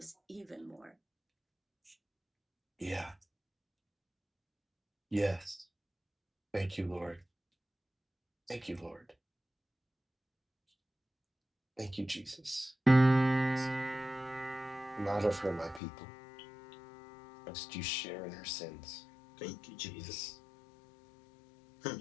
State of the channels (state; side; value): drops out; right; at 15.8 s